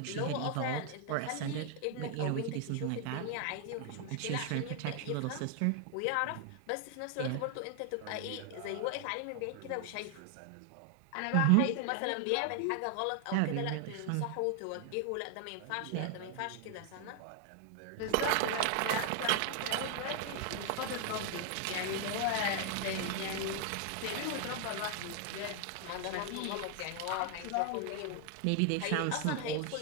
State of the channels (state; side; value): different; both; correlation 0.00